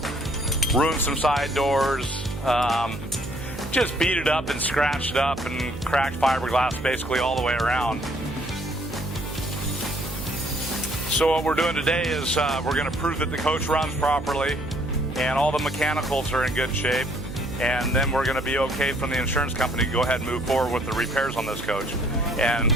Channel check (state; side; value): noise; right; hum, 11 dB below the sound